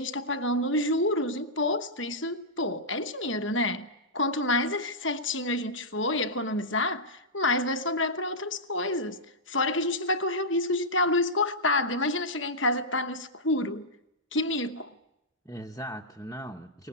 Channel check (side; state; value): both; normal; correlation -0.11